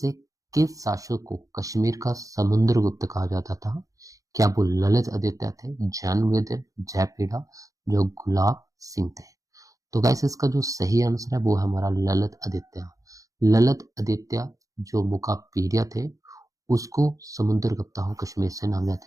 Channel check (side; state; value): left; late; 0.16 ms